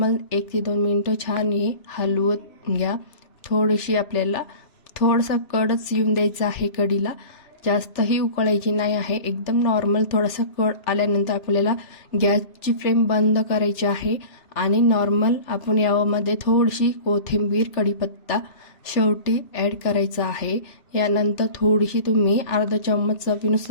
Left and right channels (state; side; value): late; right; 3.0 ms